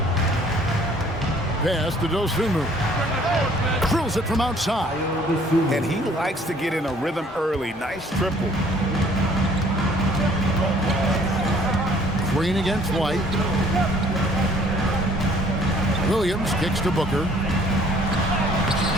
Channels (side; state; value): both; normal; correlation 0.58